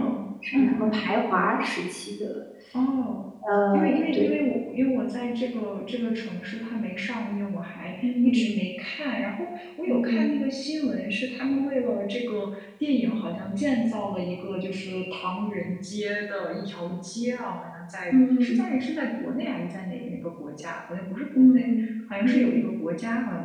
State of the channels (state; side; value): identical; both; correlation 1.00